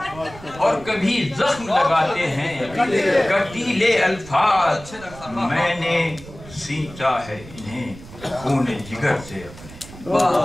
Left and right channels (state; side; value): noise; right; rumble, 17 dB below the sound